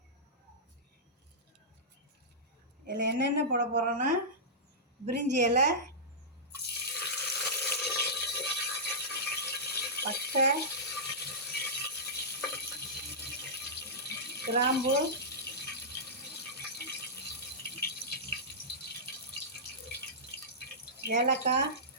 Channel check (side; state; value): both; normal; correlation -0.14